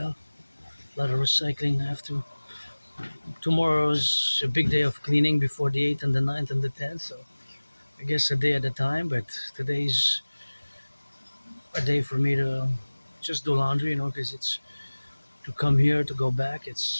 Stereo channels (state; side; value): inverted; both; correlation -1.00